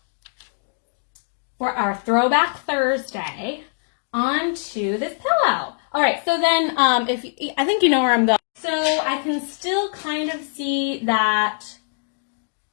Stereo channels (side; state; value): right; silent; digital silence